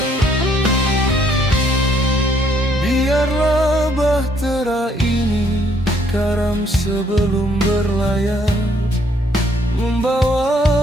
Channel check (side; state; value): both; normal; correlation 0.67